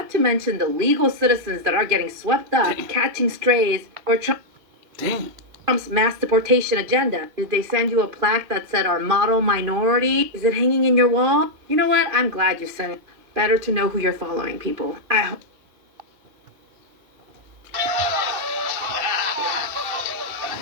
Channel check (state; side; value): late; left; 2.4 ms